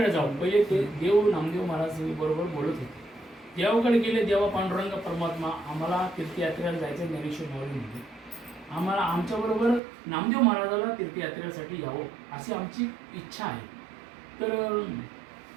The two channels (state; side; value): drops out; left; at 9.8 s